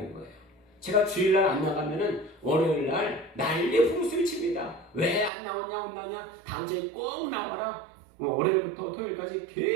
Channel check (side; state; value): left; drops out; at 5.3 s